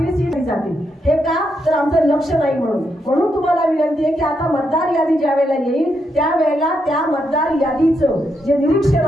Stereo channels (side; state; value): both; normal; correlation 0.80